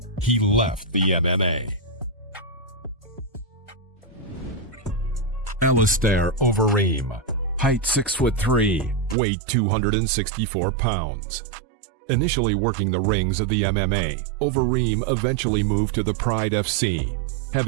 he left the MMA. Alistair Overeem, height 6'3", weight 264 pounds. Initially working the rings of the MMA, Overeem eventually moved to the Pride FC,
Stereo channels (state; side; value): drops out; left; at 9.2 s